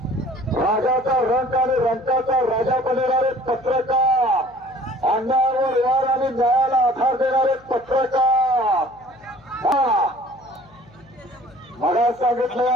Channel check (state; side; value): noise; left; hum, 27 dB below the sound